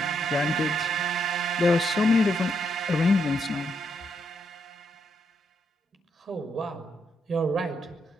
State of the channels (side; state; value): both; normal; correlation 0.78